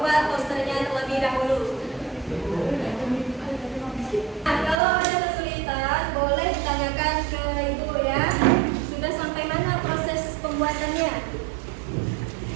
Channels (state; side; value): drops out; left; at 4.8 s